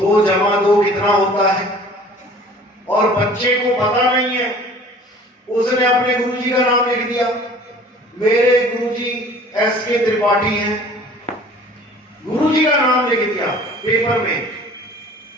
जमा 2 कितना होता है, और बच्चे को पता नहीं है, उसने अपने गुरुजी का नाम लिख दिया, मेरे गुरुजी S.K. त्रिपाठी हैं, गुरुजी का नाम लिख दिया पेपर में,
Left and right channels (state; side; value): normal; both; correlation 0.48